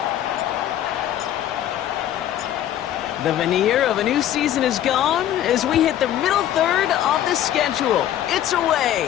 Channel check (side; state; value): right; quieter; 11.7 dB